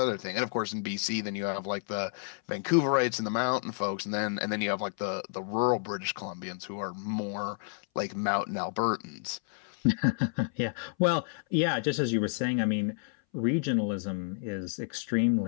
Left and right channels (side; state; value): right; silent; 58 dB below the other